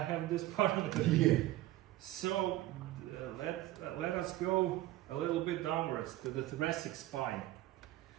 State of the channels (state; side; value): quieter; left; 15.7 dB